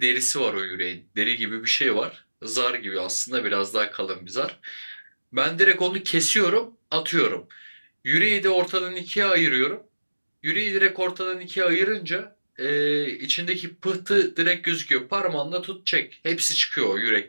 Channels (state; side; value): inverted; both; correlation -1.00